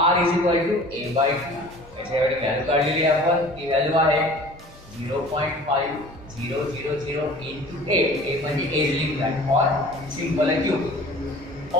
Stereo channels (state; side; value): normal; both; correlation 0.45